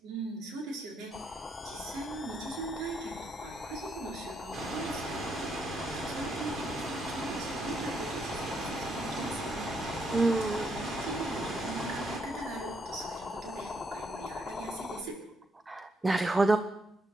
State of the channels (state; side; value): normal; both; correlation 0.75